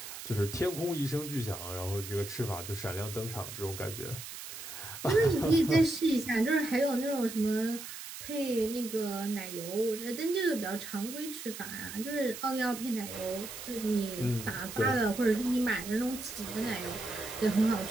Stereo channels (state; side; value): noise; right; hiss, 10 dB below the sound